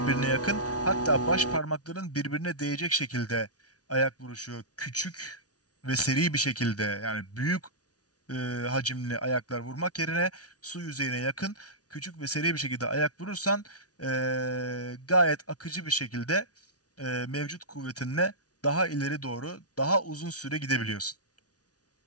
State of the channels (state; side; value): late; right; 0.68 ms